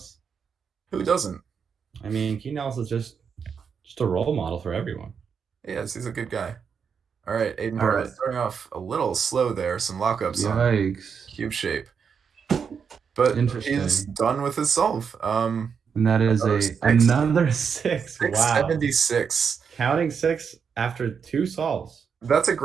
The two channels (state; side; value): quieter; left; 6.5 dB